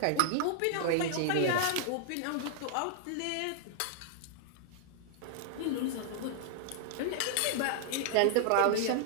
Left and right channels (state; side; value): different; both; correlation -0.01